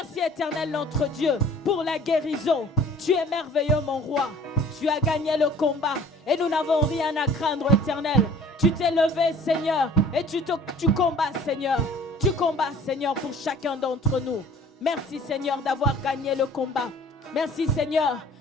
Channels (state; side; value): normal; both; correlation 0.49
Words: Éternel, notre Dieu, pour la guérison. Tu es merveilleux, mon roi. Tu as gagné le combat et nous n'avons rien à craindre, Éternel. Tu t'es levé, Seigneur, et tu combats, Seigneur. Tu combats, Seigneur, pour chacun d'entre nous. Merci, Seigneur, d'avoir gagné le combat. Merci, Seigneur,